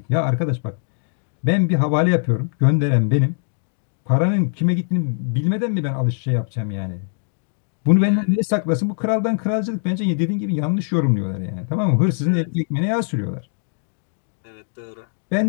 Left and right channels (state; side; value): silent; right; digital silence